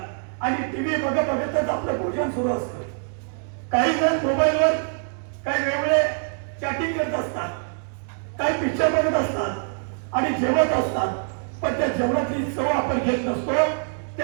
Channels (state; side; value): silent; left; digital silence